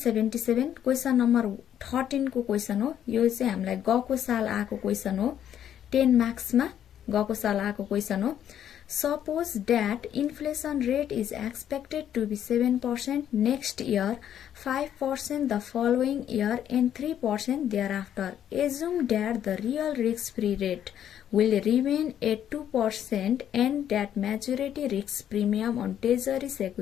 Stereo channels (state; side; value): quieter; right; 10.1 dB